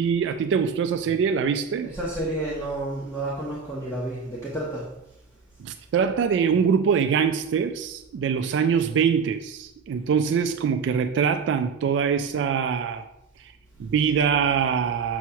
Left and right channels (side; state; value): left; quieter; 6.1 dB